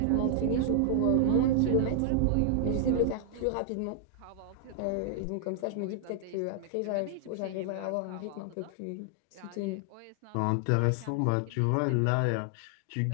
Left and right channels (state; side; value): different; both; correlation 0.00